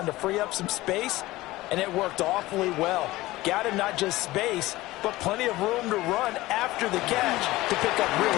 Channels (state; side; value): quieter; right; 18.3 dB